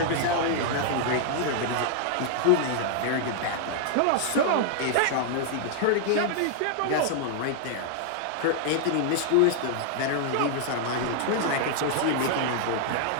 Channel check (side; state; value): both; different; correlation 0.00